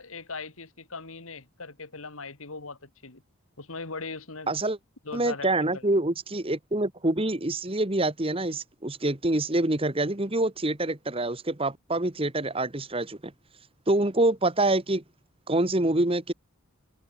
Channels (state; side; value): normal; both; correlation 0.44